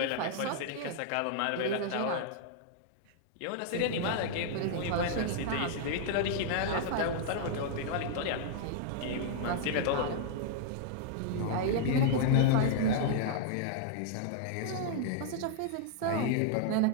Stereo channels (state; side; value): different; both; correlation -0.01